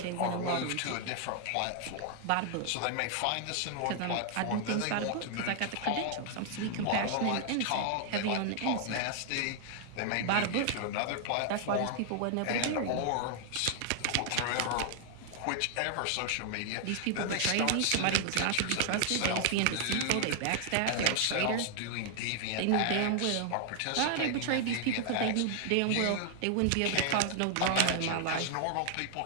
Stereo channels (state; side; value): different; both; correlation 0.00